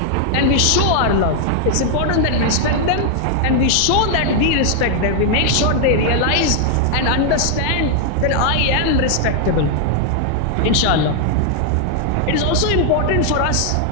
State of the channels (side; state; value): both; different; correlation 0.00